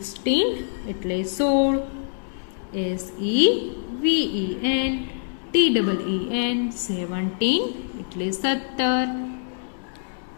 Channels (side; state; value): right; silent; digital silence